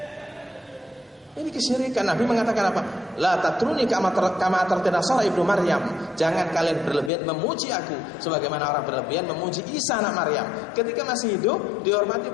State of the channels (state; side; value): drops out; right; at 7.1 s